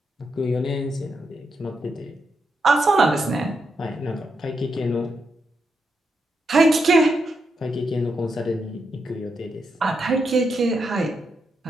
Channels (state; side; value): normal; both; correlation 0.83